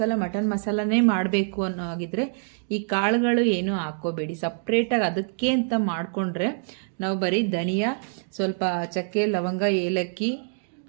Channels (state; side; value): silent; left; digital silence